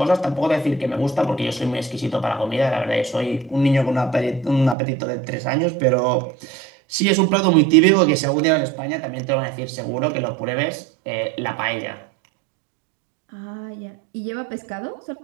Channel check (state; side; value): drops out; left; at 4.8 s